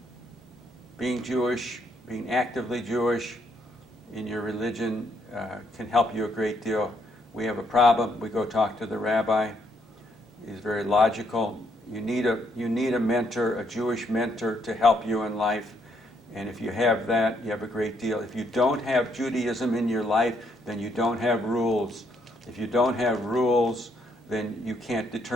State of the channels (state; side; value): normal; both; correlation 0.72